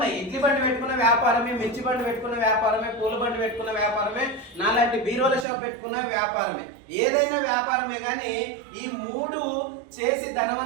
ఇడ్లీ బండి పెట్టుకున్న వ్యాపారమే, మిర్చి బండి పెట్టుకున్న వ్యాపారమే, పూల బండి పెట్టుకున్న వ్యాపారమే, నాలాంటి బీరోల షాప్ పెట్టుకున్న వ్యాపారమే. ఏదైనా వ్యాపారమే. కానీ ఈ మూడు చేసి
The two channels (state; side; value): drops out; left; at 5.5 s